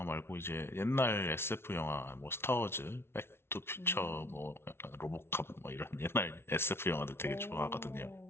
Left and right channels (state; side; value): late; right; 0.12 ms